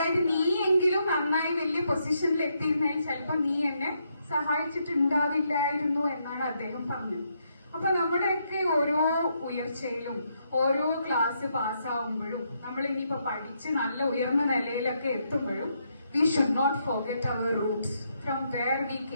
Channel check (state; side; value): inverted; both; correlation -0.77